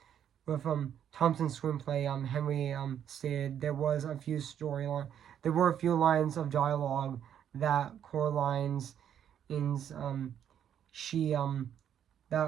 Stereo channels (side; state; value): left; quieter; 9.4 dB